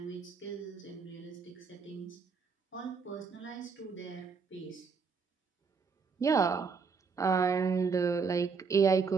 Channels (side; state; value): left; quieter; 5.3 dB